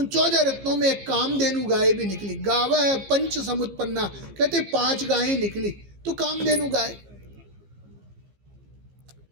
14 रत्नों में एक कामधेनु गाय भी निकली। गावः पंच समुत्पन्ना, कहते 5 गायें निकली तो कामधेनु गाय।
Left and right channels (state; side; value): late; left; 15 ms